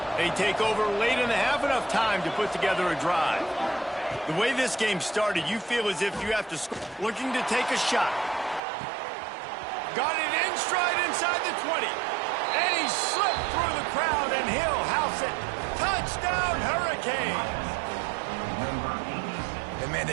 They take over late in the half, enough time to put together a drive. The way this game started, you feel as if you have to score. Looking to take a shot. Got it in stride inside the 20. And he slipped through the crowd, and he'll house it. Touchdown, Hurricanes! And, man,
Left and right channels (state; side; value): drops out; left; at 8.6 s